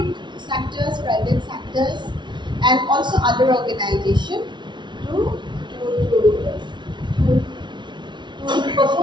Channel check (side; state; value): left; late; 0.23 ms